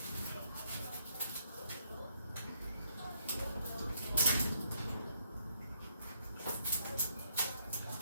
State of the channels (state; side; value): inverted; both; correlation -0.71